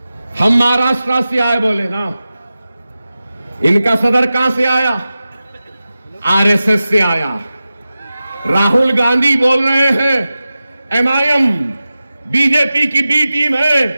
हम महाराष्ट्र से आए बोले ना, इनका सदर कहां से आया? आरएसएस से आया। राहुल गांधी बोल रहे हैं एमआईएम बीजेपी की बी टीम है,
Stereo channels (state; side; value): inverted; both; correlation -0.94